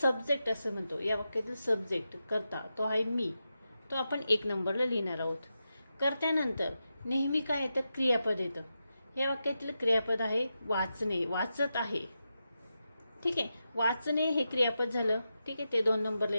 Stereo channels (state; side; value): inverted; both; correlation -0.89